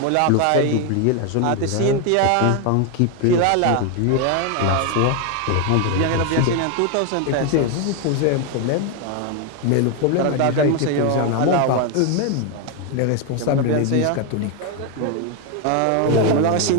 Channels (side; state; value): both; different; correlation 0.01